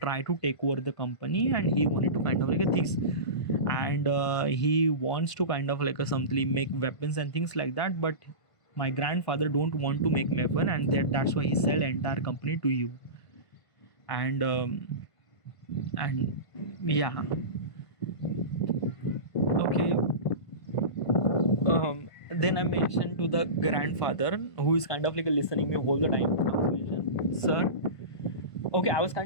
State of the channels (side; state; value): right; late; 1.5 ms